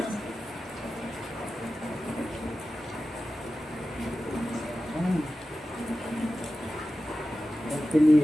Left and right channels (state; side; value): normal; both; correlation 0.94